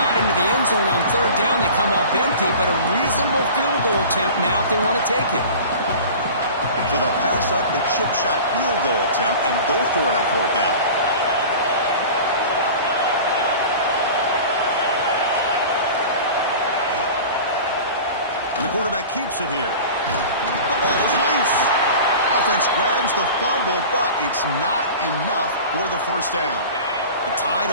into the end zone on 3rd down. They come up empty, but a reasonable field goal attempt now if they want to take it. So they'll pass up the chip shot field goal attempt and go for it on 4th down. And the quarterback keeps it here. The ball is loose. Offense grabs the fumble, but it's not enough for the 1st down. The Tide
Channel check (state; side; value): inverted; both; correlation -0.38